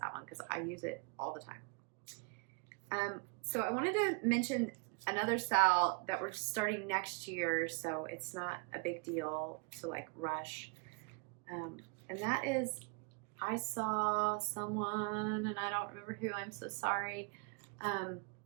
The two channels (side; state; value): left; quieter; 32.9 dB